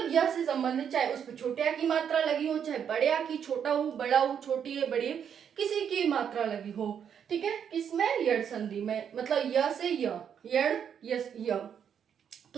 य से संबंधित, चाहे उस पर छोटे आ की मात्रा लगी हो, चाहे बड़े आ की, छोटा हो बड़ा हो, छोटी है बड़ी है, किसी की मात्रा लगी हो। ठीक है, किसमें, यड़ संधि में, मतलब य से य, यड़ यस य,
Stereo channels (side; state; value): left; quieter; 8.1 dB